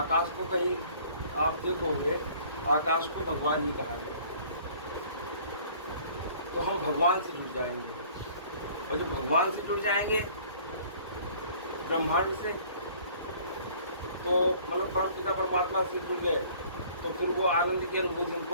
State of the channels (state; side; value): inverted; both; correlation -0.53